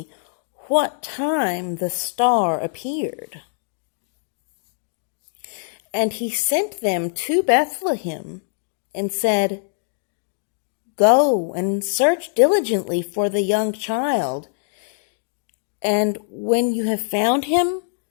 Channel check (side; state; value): right; silent; digital silence